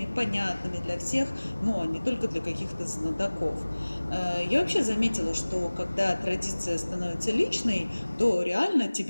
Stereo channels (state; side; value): inverted; both; correlation -1.00